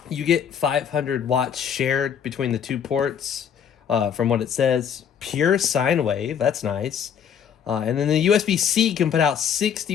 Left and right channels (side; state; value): right; quieter; 8.1 dB